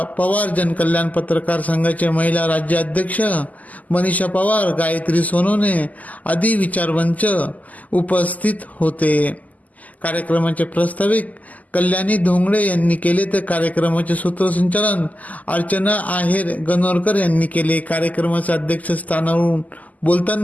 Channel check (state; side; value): late; right; 0.077 ms